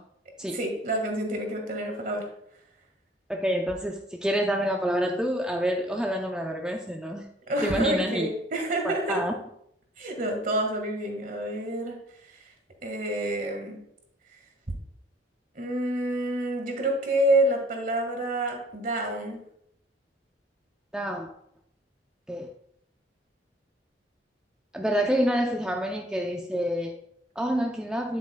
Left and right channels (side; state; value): both; normal; correlation 0.56